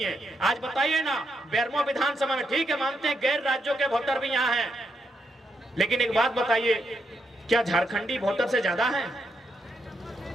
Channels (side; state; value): both; normal; correlation 0.81